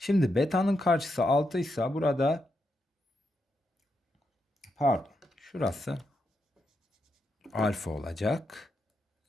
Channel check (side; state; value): both; normal; correlation 0.83